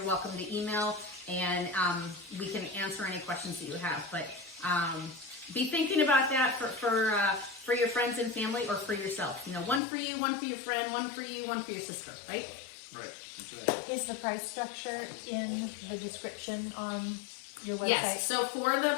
welcome to email, and we can answer any questions that you have. But be thinking about that for your friends and family, or for yourself. One for you, one for your friend, one for you, one for your sister, right? Right. Is the price structure in the description on your website? Yes. So for the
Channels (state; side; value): drops out; right; at 9.8 s